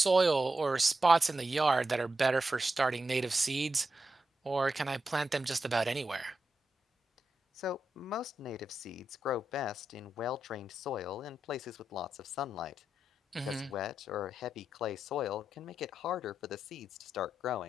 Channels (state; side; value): normal; both; correlation 0.87